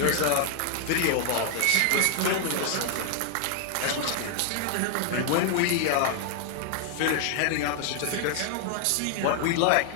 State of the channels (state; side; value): different; both; correlation 0.00